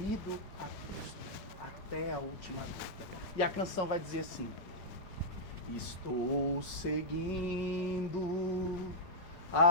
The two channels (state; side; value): late; right; 4.9 ms